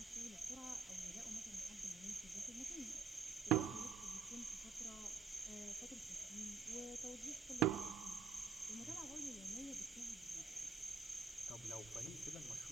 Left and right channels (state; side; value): quieter; left; 5.1 dB